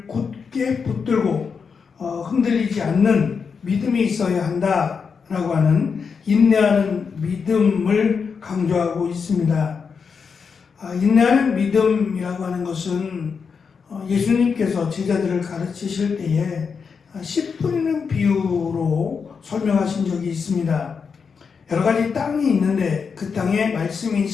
굳게 붙들고 흔들리지 않는 믿음이 있어야 한다라고 하는 인내하는 믿음을 강조하고 있습니다. 인내하는 믿음이라고 하는 것은 예수님께서 제자들을 가르치실 때에 씨 뿌리는 비유로 설명하신 적이 있습니다. 여러 가지 땅이 있는데 그 땅에 말씀인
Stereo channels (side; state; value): right; quieter; 5.8 dB